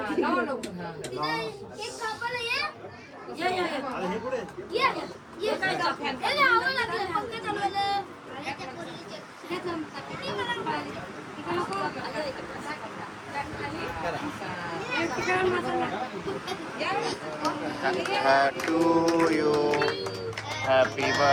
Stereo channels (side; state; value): both; identical; correlation 1.00